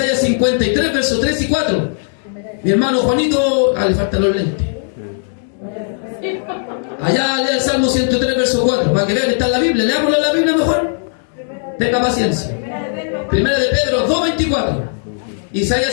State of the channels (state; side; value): silent; right; digital silence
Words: 53, verso 3 y 4. Mi hermano Juanito, le faltan los lentes. Allá lea el Salmo 103, verso 4, para que vean que está en la Biblia. Leámoslo en la Biblia mejor. Tenga paciencia. Primera de Pedro 2, 24.